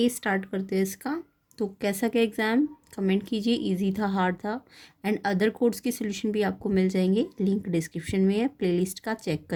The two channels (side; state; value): both; identical; correlation 1.00